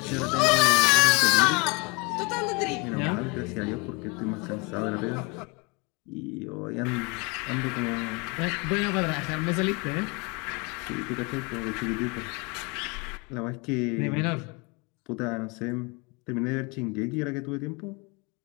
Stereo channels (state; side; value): quieter; right; 28.2 dB